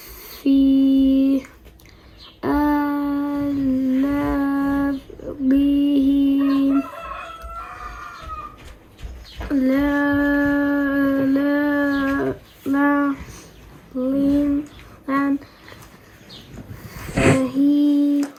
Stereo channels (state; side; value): identical; both; correlation 1.00